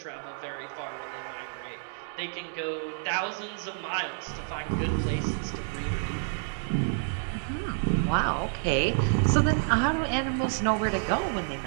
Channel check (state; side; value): silent; left; digital silence